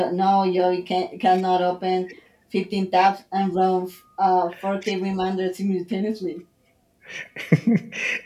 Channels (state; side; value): identical; both; correlation 1.00